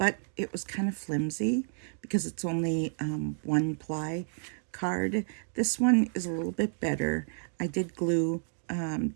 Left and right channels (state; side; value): silent; left; digital silence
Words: it was kind of flimsy because it's only one ply card. This one is a little bit better. I did glue